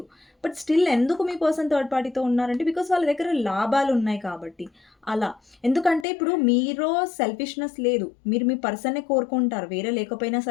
బట్ స్టిల్ ఎందుకు మీ పర్సన్ థర్డ్ పార్టీతో ఉన్నారంటే బికాస్ వాళ్ళ దగ్గర లాభాలు ఉన్నాయి కాబట్టి అలా. ఎందుకంటే ఇప్పుడు మీలో సెల్ఫిష్నెస్ లేదు, మీరు మీ పర్సన్నే కోరుకుంటారు, వేరే లేకపోయినా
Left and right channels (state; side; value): drops out; right; at 6.1 s